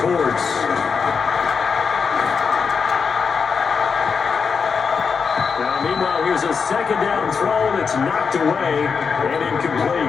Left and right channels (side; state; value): right; quieter; 5.7 dB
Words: Now, meanwhile, here's a second down throw that's knocked away and incomplete.